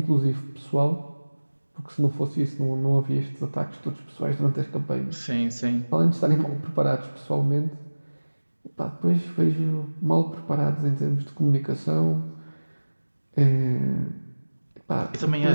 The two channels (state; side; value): inverted; both; correlation -1.00